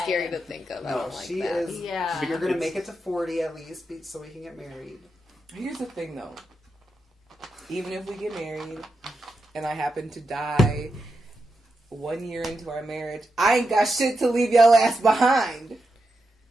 scary to think of. I no, don't like she that. is. Yeah. You're gonna It's- make it to 40 at least, so we can get married. Here's the thing, though. Even if we get married and I happen to die 1 year into our marriage, I ain't got shit to leave your ass behind.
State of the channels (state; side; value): normal; both; correlation 0.86